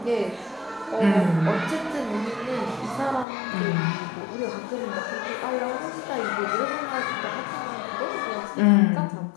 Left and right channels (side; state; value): right; drops out; at 3.2 s